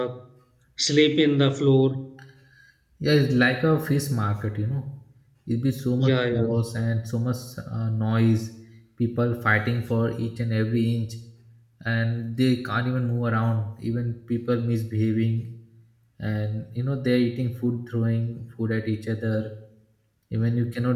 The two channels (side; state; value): both; identical; correlation 1.00